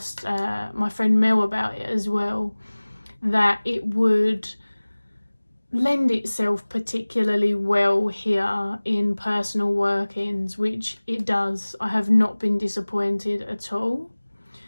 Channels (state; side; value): inverted; both; correlation -1.00